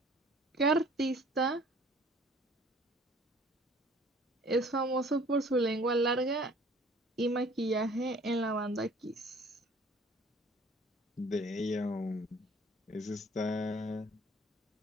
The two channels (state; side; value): normal; both; correlation 0.53